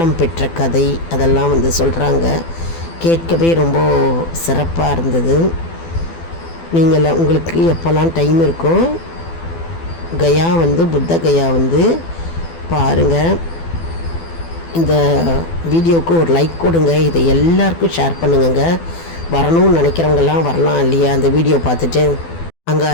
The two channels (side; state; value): right; late; 12 ms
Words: பெற்ற கதை அதெல்லாம் வந்து சொல்கிறாங்க. கேட்கவே ரொம்ப சிறப்பாக இருந்தது. நீங்கள் உங்களுக்கு எப்போல்லாம் டைம் இருக்கோ கயா வந்து புத்த கயா வந்து பாருங்கள். இந்த வீடியோவுக்கு ஒரு லைக் கொடுங்க. இதை எல்லாருக்கும் ஷேர் பண்ணுங்க. வரணும்னு நினைக்கிறவங்கெல்லாம் வரலாம் இல்லையா அந்த வீடியோ பார்த்துட்டு. அங்கே